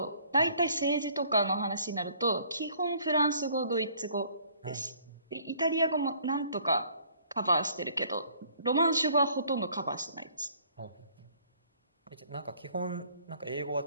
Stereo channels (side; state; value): both; inverted; correlation -0.59